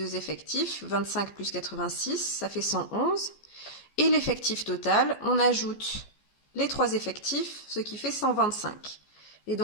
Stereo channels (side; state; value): right; late; 14 ms